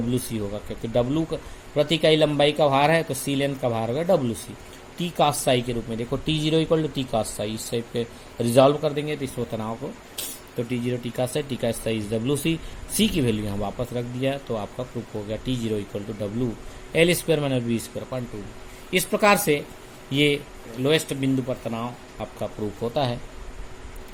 होगा, क्योंकि W प्रति इकाई लंबाई का भार है तो C लेंथ का भार होगा WC। T cos साई के रूप में देखो, T0 equal to T cos psi, इस टाइप पे रिजॉल्व कर देंगे तो इस तनाव को, तो T0 T cos Sai, T cos Sai is WC। C की वैल्यू यहाँ वापस रख दिया तो आपका प्रूफ हो गया T0 equal to W L square minus b square upon 2। इस प्रकार से ये लोएस्ट बिंदु पर तनाव आपका प्रूफ होता है।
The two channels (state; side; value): identical; both; correlation 1.00